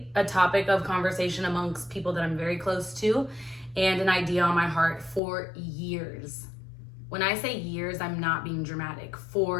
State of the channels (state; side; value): drops out; right; at 5.2 s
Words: a topic of conversation amongst people that I'm very close to and an idea on my heart for years. When I say years, I'm not being dramatic.